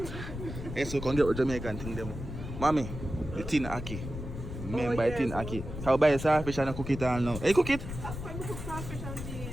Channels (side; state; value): left; noise; rumble, 8 dB below the sound